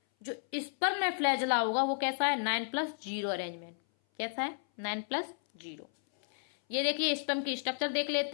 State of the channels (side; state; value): right; silent; 56 dB below the other